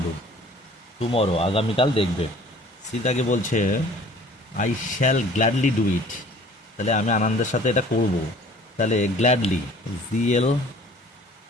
টুমরো, আগামীকাল দেখবে। সীতাকে বলছে I shall gladly do it, তাহলে আমি আনন্দের সাথে এটা করব, তাহলে গ্ল্যাডলি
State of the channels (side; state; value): both; normal; correlation 0.50